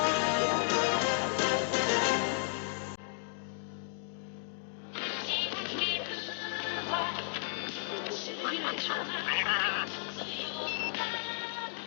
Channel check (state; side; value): silent; right; digital silence